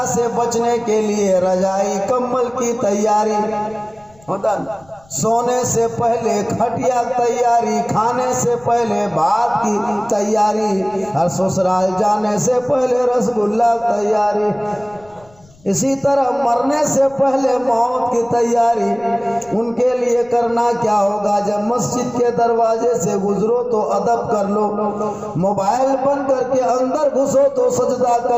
से बचने के लिए रजाई कंबल की तैयारी, होता सोने से पहले खटिया तैयारी, खाने से पहले भात की तैयारी, और ससुराल जाने से पहले रसगुल्ला तैयारी। इसी तरह मरने से पहले मौत की तैयारी उनके लिए करना क्या होगा। जब मस्जिद के दरवाजे से गुजरो तो अदब कर लो, मोबाइल बंद करके अंदर घुसो तो सजदा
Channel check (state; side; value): noise; left; rumble, 28 dB below the sound